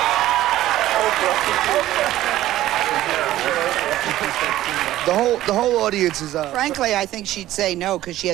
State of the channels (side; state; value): left; quieter; 14.5 dB